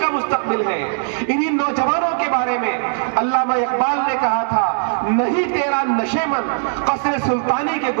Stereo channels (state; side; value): silent; left; digital silence